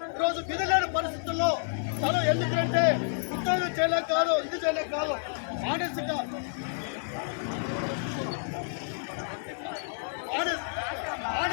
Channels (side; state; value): right; silent; digital silence